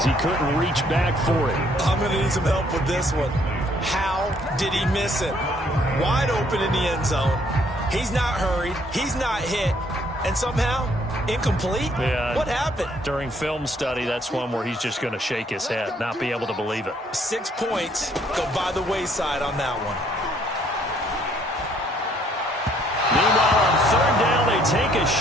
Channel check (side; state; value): both; normal; correlation 0.65